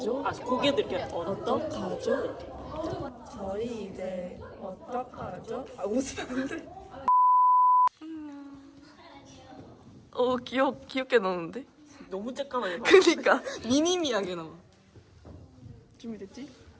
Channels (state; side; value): identical; both; correlation 1.00